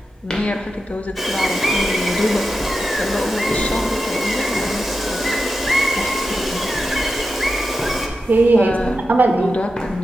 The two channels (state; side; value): normal; both; correlation 0.90